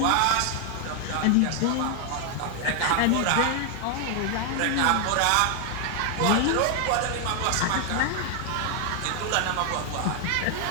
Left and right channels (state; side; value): different; both; correlation 0.00